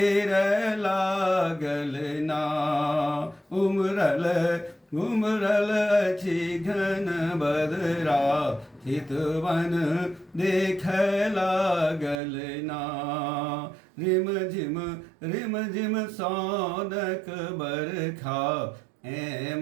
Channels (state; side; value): drops out; left; at 12.2 s